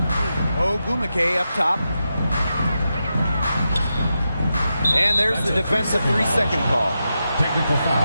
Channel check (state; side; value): inverted; both; correlation -0.88